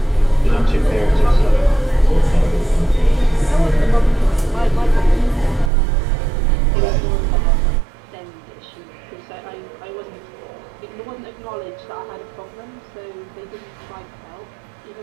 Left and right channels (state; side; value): drops out; left; at 5.7 s